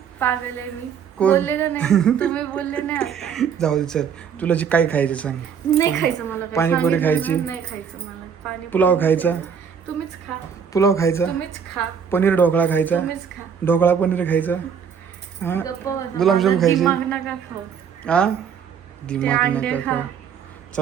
पागल आहे मी. कोण? बोलले का नाही तुम्ही? बोलले नाही आता. जाऊ दे चल, तुला जे काय खायचं सांग. नाही खायचं मला काय. पाणीपुरी खायची? नाही खायचं मला पाणी. पुलाव खायचा? तुम्हीच खा. पुलाव खायचा? तुम्हीच खा. पनीर ढोकळा खायचा? तुम्हीच खा. ढोकळा पनीर खायचा? हा गप्प बसा. गुलाबजाम माझा खायचे? दिमाग नका खाऊ. हा ते दिमाग अंडे नका खा. खाऊ.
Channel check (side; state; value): left; quieter; 7.2 dB